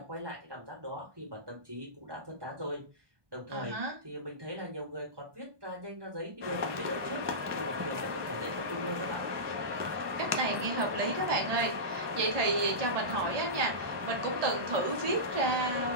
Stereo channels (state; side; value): late; left; 1.2 ms